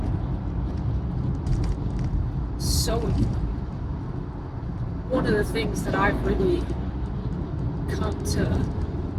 So important. One of the things that I've really come to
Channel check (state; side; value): identical; both; correlation 1.00